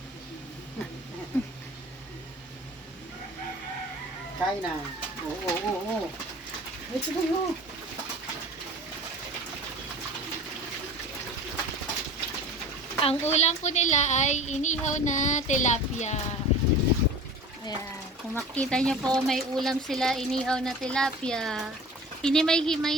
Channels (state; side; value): normal; both; correlation 0.39